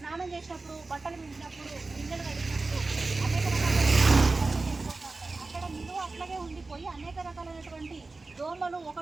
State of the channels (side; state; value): left; quieter; 3.6 dB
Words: చేసినప్పుడు, బట్టలు వించినప్పుడు, గిన్నెలు కడిగినప్పుడు అనేక అక్కడ నిలువ అట్లాగే ఉండిపోయి అనేక రకాలైనటువంటి దోమలు